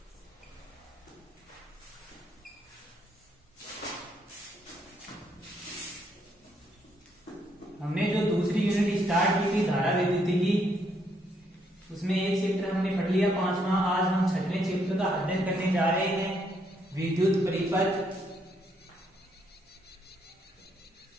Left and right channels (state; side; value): normal; both; correlation 0.73